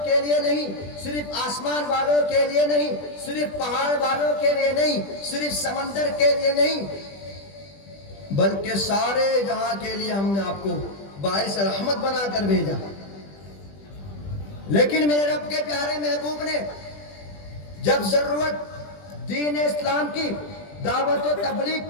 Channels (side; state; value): right; late; 20 ms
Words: کے لیے نہیں، صرف آسمان والوں کے لیے نہیں، صرف پہاڑ والوں کے لیے نہیں، صرف سمندر کے لیے نہیں، بلکہ سارے جہاں کے لیے ہم نے آپ کو باعث رحمت بنا کر بھیجا. لیکن میرے رب کے پیارے محبوب نے جب ضرورت دین اسلام کی دعوت و تبلیغ